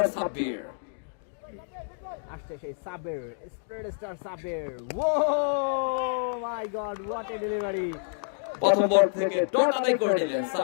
সাব্বির। আসছে সেই Saber, spread star Saber. Oh my god, what a delivery! প্রথম বল থেকে ডট আদায় করে নিলেন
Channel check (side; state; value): right; silent; digital silence